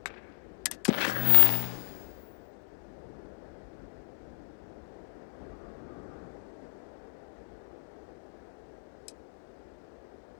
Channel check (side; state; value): right; quieter; 34.4 dB